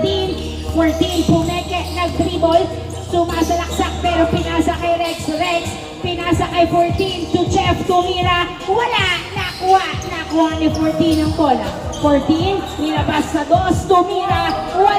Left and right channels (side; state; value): both; identical; correlation 1.00